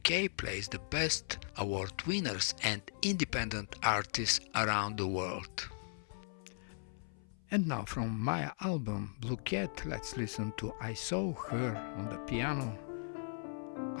plays the best award winners and independent artists around the world. And now from my album Blue Cat, let's listen to I Saw Her on the piano,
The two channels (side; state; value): right; silent; 53 dB below the other